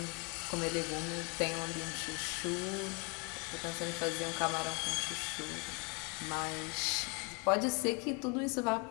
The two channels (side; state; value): right; quieter; 31.4 dB